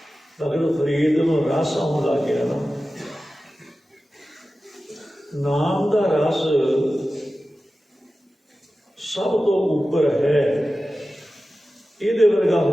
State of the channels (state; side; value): normal; both; correlation 0.94